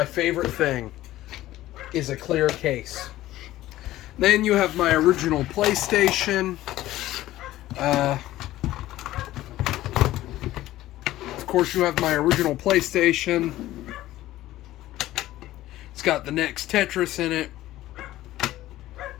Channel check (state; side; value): quieter; right; 15.3 dB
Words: favorite thing. is a clear case. Then you have my original PlayStation. Of course, you have my original PlayStation. It's got the next Tetris in it.